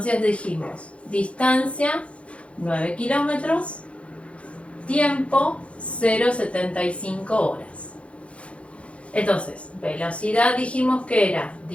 dijimos, distancia 9 kilómetros, tiempo 0,75 horas. Entonces, velocidad dijimos que era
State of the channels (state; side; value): late; right; 0.061 ms